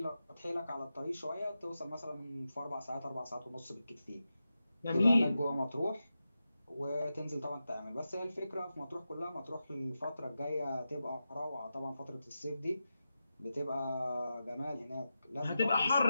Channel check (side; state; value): both; inverted; correlation -0.91